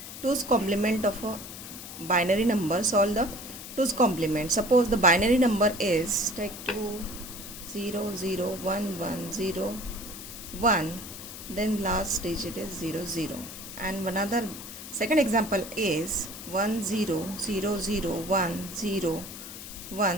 2's complement of a binary number. Solve the 2's complement. Suppose the binary number is take 2 0 0 1 1 0 1, then last digit is 0 0, and another second example is 1 0 0 0 1 0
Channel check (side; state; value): left; noise; hiss, 11 dB below the sound